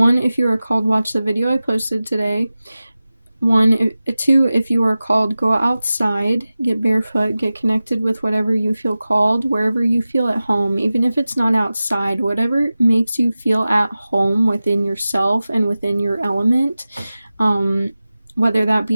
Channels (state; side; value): inverted; both; correlation -0.95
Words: if you are called, watch the video I posted today. 2 if you are called, go outside, get barefoot, get connected with whatever you feel called, wherever you feel at home, even if it's not outside, whatever makes you feel at home within yourself and within your element, whether that